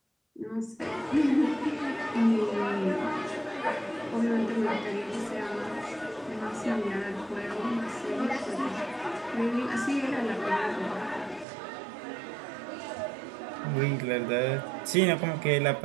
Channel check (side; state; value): left; drops out; at 11.5 s